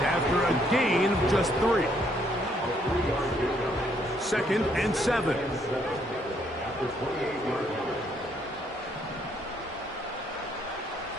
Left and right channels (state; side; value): normal; both; correlation 0.69